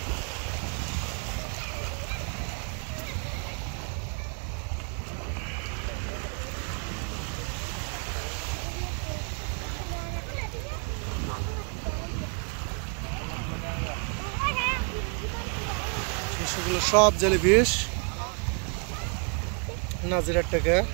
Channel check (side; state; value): left; quieter; 37.2 dB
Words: সেগুলো সব জেলিফিশ নাজিরার টাকা।